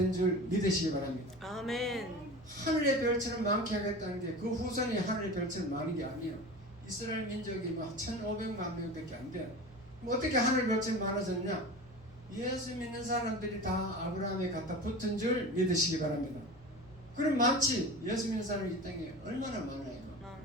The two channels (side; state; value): both; normal; correlation 0.33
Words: 줄 믿으시기 바랍니다. 아멘. 하늘의 별처럼 많게 하겠다는 게 그 후손이 하늘의 별처럼 많은 게 아니에요. 이스라엘 민족이 뭐 1,500만 명밖에 안 돼. 뭐 어떻게 하늘 별처럼 많아졌냐? 예수 믿는 사람들이 다 아브라함에 갖다 붙은 줄 믿으시기 바랍니다. 그럼 많지. 예수 믿는 사람이 이 땅에 얼마나 많아요.